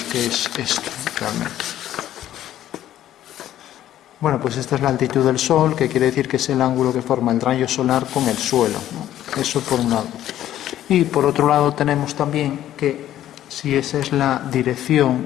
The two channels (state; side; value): quieter; right; 12.3 dB